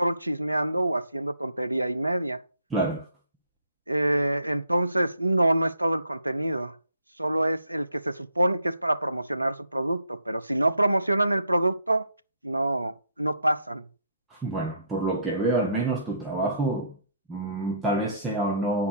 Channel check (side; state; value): both; inverted; correlation -0.67